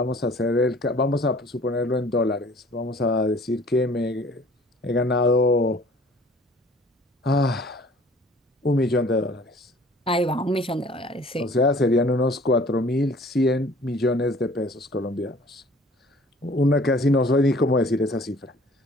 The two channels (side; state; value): both; normal; correlation 0.52